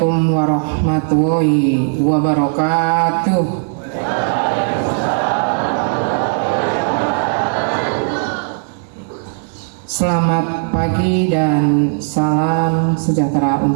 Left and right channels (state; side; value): silent; left; 59 dB below the other